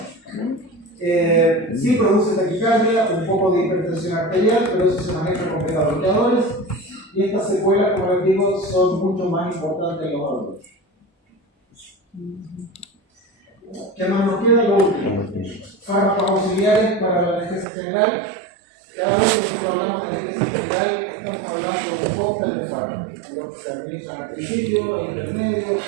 Sí produce taquicardia, un poco de hipertensión arterial, pero eso se maneja con beta-bloqueadores y estas secuelas, como les digo, son mucho más importantes en los adultos. ¿Qué más nos queda? Lo último. Fármacos auxiliares para la anestesia general. Cada vez que nosotros hablamos de anestesia general, estamos hablando de un cóctel de fármacos, los que se administran al principio, al intermedio,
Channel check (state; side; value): drops out; left; at 17.7 s